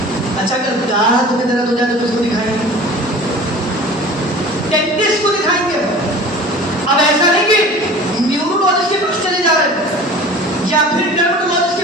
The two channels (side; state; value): both; normal; correlation 0.41